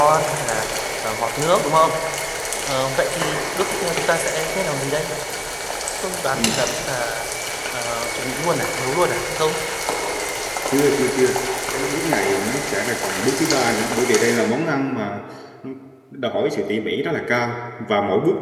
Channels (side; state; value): both; identical; correlation 1.00